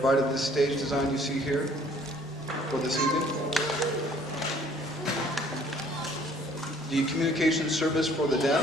this stage design you see here for this evening. The Communication Service for the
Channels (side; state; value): both; normal; correlation 0.58